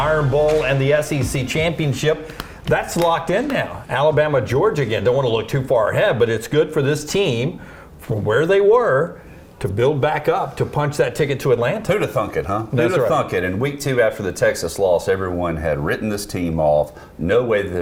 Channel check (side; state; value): both; identical; correlation 1.00